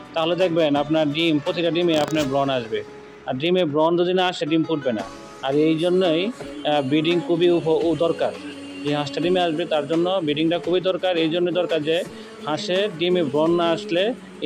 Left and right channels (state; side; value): identical; both; correlation 1.00